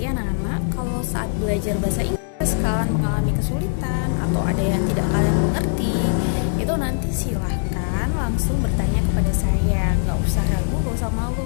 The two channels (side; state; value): right; silent; digital silence